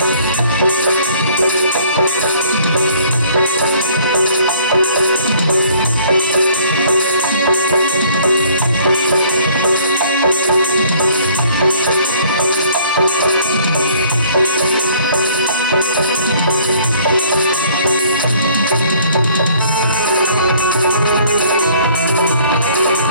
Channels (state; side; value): inverted; both; correlation -0.57